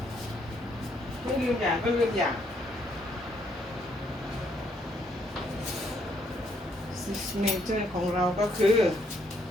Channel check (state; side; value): normal; both; correlation 0.71